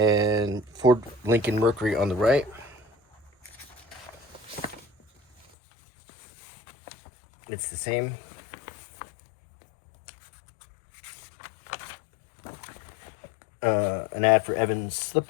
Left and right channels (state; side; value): drops out; right; at 5.5 s